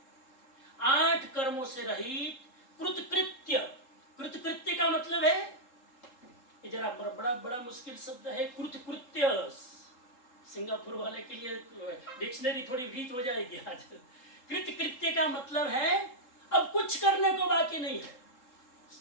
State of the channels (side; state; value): right; late; 3.8 ms